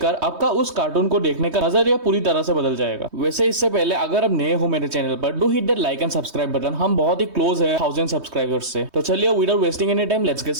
आपका उस कार्टून को देखने का नजरिया पूरी तरह से बदल जाएगा। वैसे इससे पहले अगर आप नए हो मेरे चैनल पर, do hit that like and subscribe button. हम बहुत ही क्लोज है 1000 सब्सक्राइबर्स से। तो चलिए without wasting any time let's get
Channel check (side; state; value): left; late; 3.2 ms